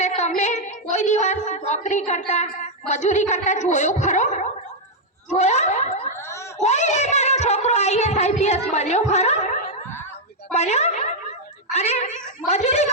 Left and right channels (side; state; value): both; normal; correlation -0.02